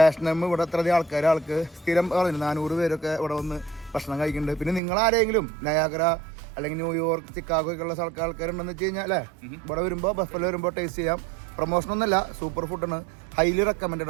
ഇവിടെ അത്രയധികം ആൾക്ക് സ്ഥിരം പറഞ്ഞു 400 പേരൊക്കെ ഇവിടെ വന്ന് ഭക്ഷണം കഴിക്കുന്നുണ്ട്. പിന്നെ നിങ്ങളാരെങ്കിലും നയാഗ്ര അല്ലെങ്കിൽ ന്യൂയോർക്ക്, ചിക്കാഗോ ഒക്കെ ഉള്ള ആൾക്കാരുണ്ടെന്ന് വെച്ച് കഴിഞ്ഞാൽ അല്ലേ, ഇവിടെ വരുമ്പോൾ ബഫല്ലോ വരുമ്പോൾ ടേസ്റ്റ് ചെയ്യാം. പ്രൊമോഷനൊന്നുമല്ല, സൂപ്പർ ഫുഡാണ്, ഹൈലി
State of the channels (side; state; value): left; drops out; at 4.8 s